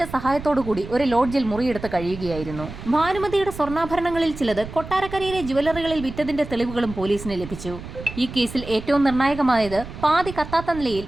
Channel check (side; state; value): right; noise; rumble, 12 dB below the sound